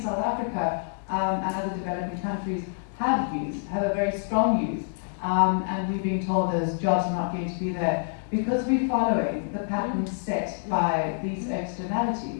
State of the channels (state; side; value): silent; right; 60 dB below the other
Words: Africa and other developing countries have a very strong youth, and we've been told those jobs are not going to be there because we're following the patterns set by these